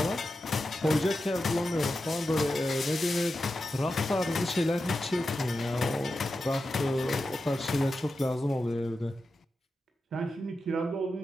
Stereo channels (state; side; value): normal; both; correlation 0.91